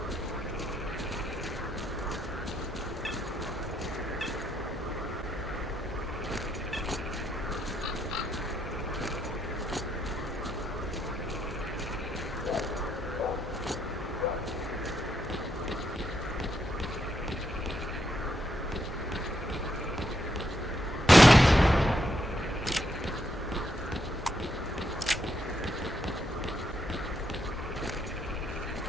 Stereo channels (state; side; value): normal; both; correlation 0.78